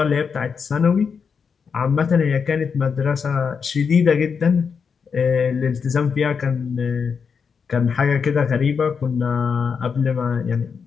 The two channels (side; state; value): right; quieter; 6.1 dB